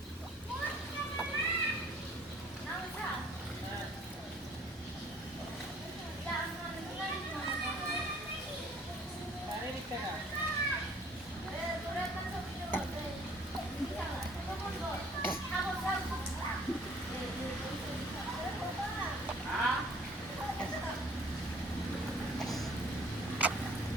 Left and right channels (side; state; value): both; normal; correlation 0.55